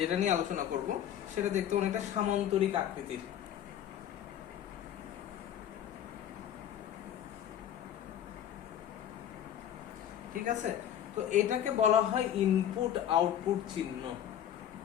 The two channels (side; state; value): right; quieter; 10.3 dB